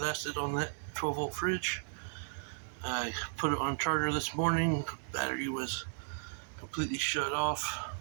on that 12-volt fridge. I put it on charger this morning. Battery was completely shut off.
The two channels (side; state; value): left; silent; digital silence